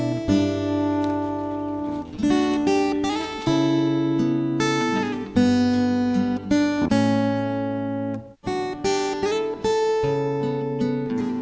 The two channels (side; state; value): both; identical; correlation 1.00